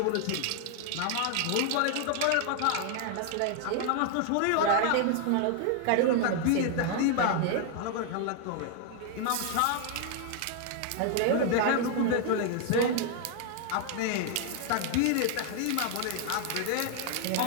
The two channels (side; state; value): both; different; correlation 0.00